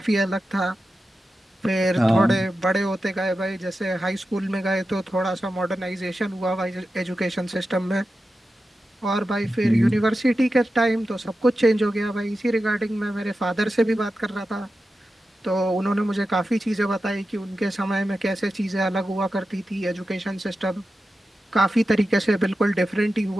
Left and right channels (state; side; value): normal; both; correlation 0.92